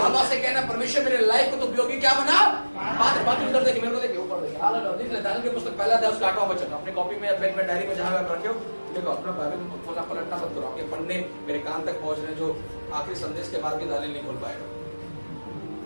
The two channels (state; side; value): inverted; both; correlation -1.00